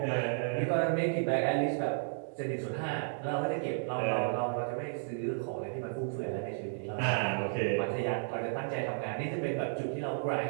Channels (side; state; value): left; silent; digital silence